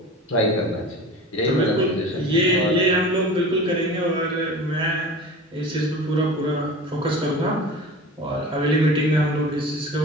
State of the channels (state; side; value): normal; both; correlation 0.36